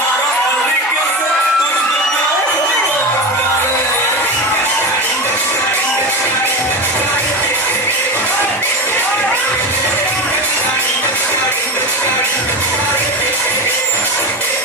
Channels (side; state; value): both; normal; correlation 0.22